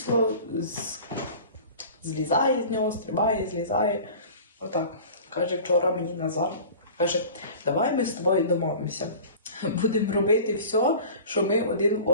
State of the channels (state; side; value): inverted; both; correlation -0.40